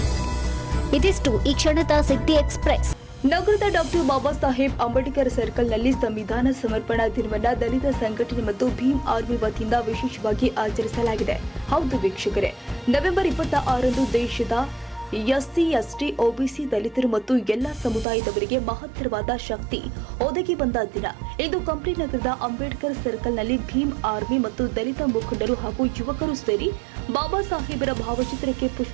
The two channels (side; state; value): left; drops out; at 18.1 s